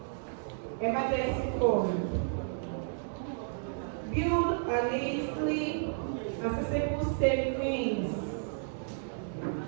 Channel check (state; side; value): silent; left; digital silence